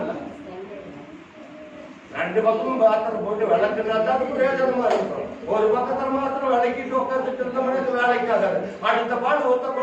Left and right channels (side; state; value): both; identical; correlation 1.00